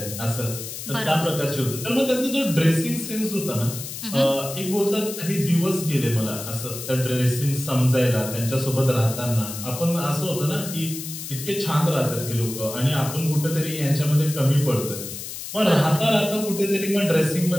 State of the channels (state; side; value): noise; left; hiss, 9 dB below the sound